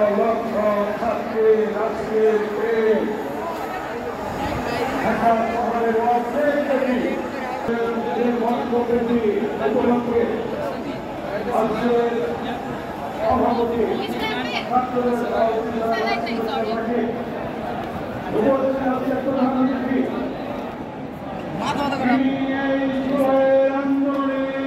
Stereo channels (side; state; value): both; identical; correlation 1.00